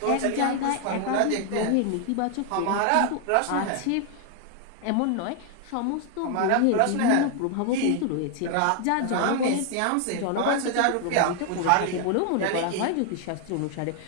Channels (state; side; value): different; both; correlation 0.00